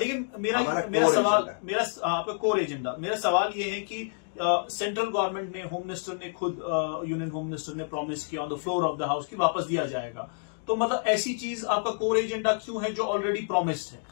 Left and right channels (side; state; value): right; silent; digital silence